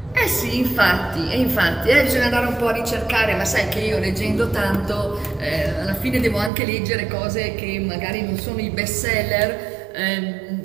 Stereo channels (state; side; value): drops out; left; at 6.5 s